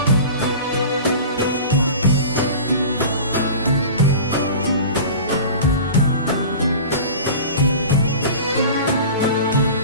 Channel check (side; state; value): both; inverted; correlation -0.37